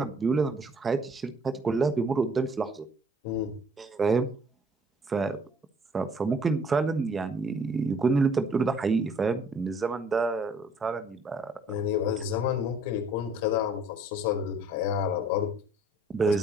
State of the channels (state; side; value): normal; both; correlation 0.59